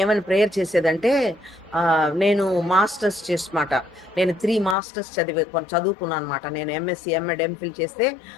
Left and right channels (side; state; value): right; drops out; at 4.8 s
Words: ఏమని ప్రేయర్ చేసేదంటే, నేను మాస్టర్స్ చేసమాట, నేను 3 masters చదువుకున్నాను అనమాట. నేను ఎంఎస్సి ఎంఎడ్ ఎంఫిల్ చేస్తే